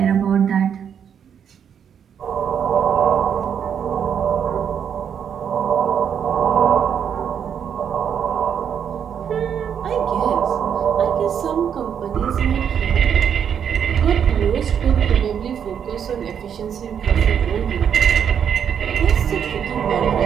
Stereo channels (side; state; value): left; quieter; 8.1 dB